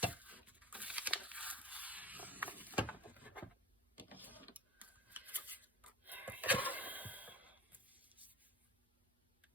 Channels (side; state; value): both; normal; correlation 0.35